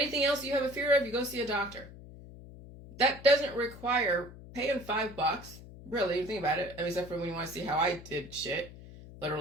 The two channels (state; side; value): noise; left; hum, 16 dB below the sound